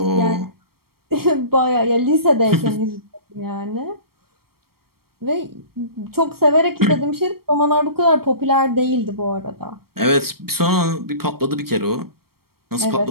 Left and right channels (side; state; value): left; late; 0.94 ms